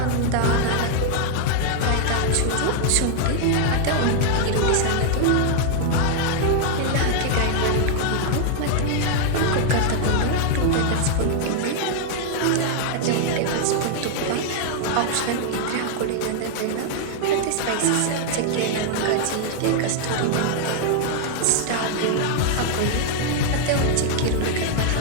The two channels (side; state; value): both; different; correlation 0.00